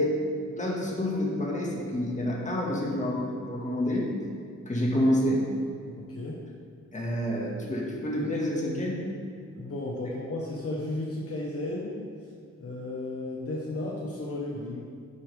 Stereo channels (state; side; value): normal; both; correlation 0.59